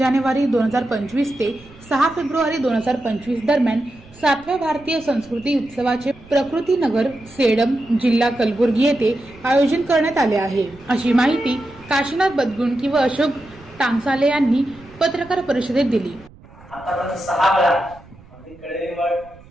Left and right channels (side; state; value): right; noise; rumble, 23 dB below the sound